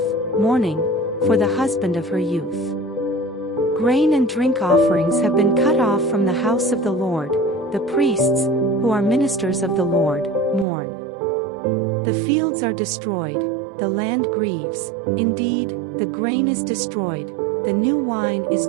mourning, for the husband of her youth. Grain and drink offerings have been cut off from the house of the Lord, the priests, who are ministers of the Lord, mourn. The fields are destroyed, the land grieves, indeed, the grain is destroyed, the new wine is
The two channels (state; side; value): drops out; left; at 10.7 s